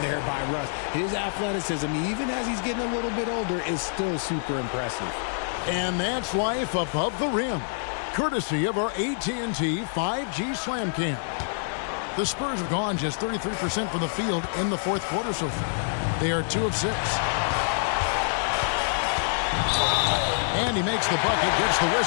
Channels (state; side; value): silent; right; digital silence